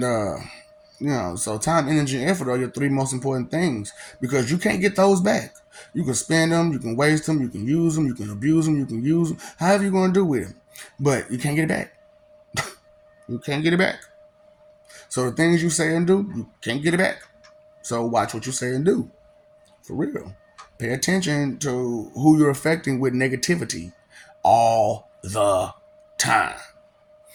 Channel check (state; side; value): identical; both; correlation 1.00